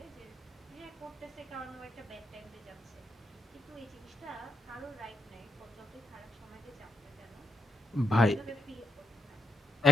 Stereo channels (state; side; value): normal; both; correlation 0.81